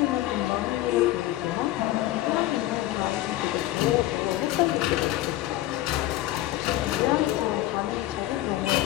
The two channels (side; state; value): right; quieter; 15.6 dB